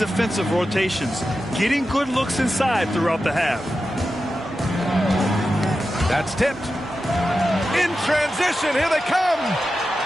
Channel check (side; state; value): both; normal; correlation 0.91